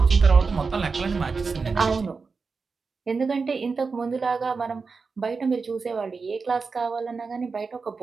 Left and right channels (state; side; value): quieter; left; 4.7 dB